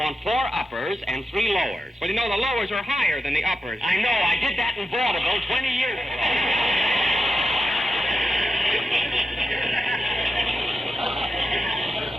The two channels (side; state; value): both; normal; correlation 0.88